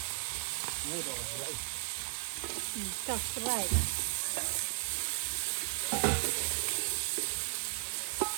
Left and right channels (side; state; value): left; silent; digital silence